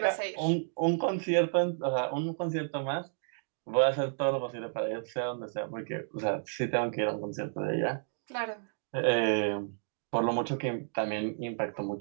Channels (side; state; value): left; silent; digital silence